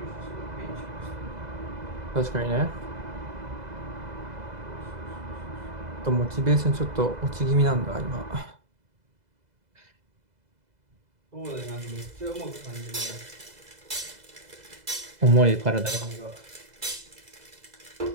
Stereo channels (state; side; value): late; left; 2.0 ms